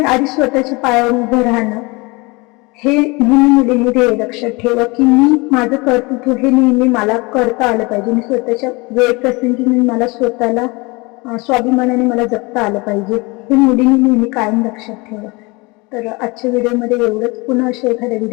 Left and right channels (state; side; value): quieter; right; 25.7 dB